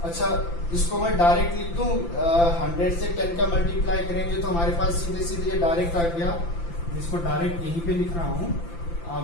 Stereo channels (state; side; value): late; right; 5.9 ms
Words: अच्छा इसको मैं डायरेक्ट लिख दूं, 100 से 10 का मल्टीप्लाई करेंगे तो हमारे पास सीधे सीधे डायरेक्ट आ गया। इसको डायरेक्ट यहीं पे लिख रहा हूं,